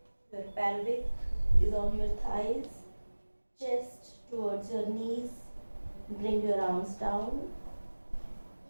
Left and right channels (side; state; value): both; inverted; correlation -1.00